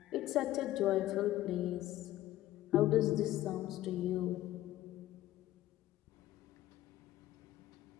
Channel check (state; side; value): quieter; right; 14.6 dB